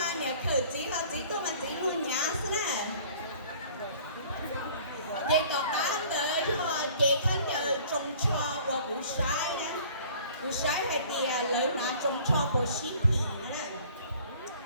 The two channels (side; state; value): both; inverted; correlation -0.51